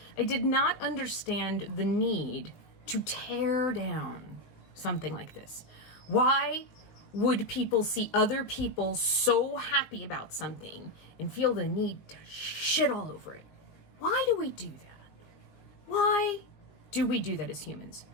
did not understand the need to tear down something like this. Why would people see other people so happy about something and feel the need to shit all over it? Why do we do that? Why do we do that as humans?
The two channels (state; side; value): late; right; 19 ms